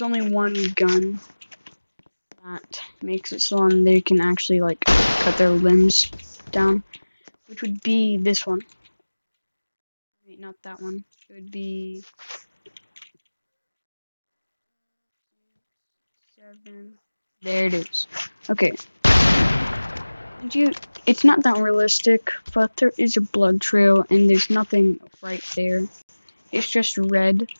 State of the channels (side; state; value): both; inverted; correlation -1.00